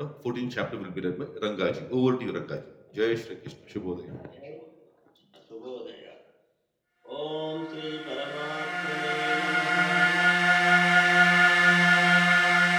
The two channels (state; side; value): identical; both; correlation 1.00